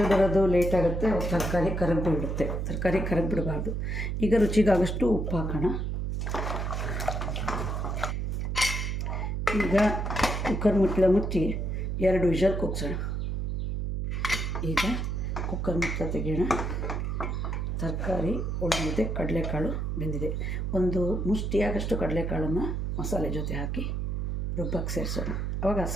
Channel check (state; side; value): noise; right; hum, 1 dB below the sound